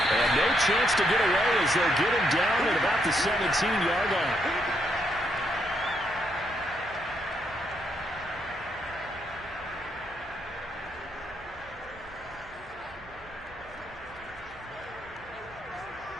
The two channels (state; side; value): noise; right; hum, 23 dB below the sound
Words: And no chance to get away as they'll get him down at about the 17-yard line.